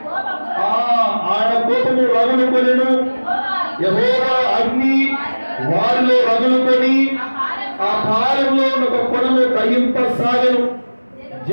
ఆయన కోపము రగులుకొనెను. యెహోవా అగ్ని వారిలో రగులుకొని ఆ పాలెంలో ఒక కొనను దహింపసాగెను.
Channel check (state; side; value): inverted; both; correlation -1.00